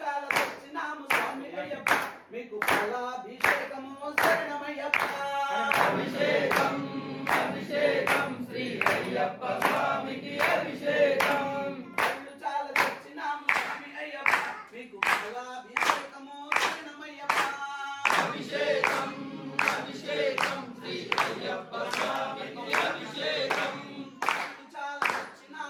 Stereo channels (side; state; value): both; identical; correlation 1.00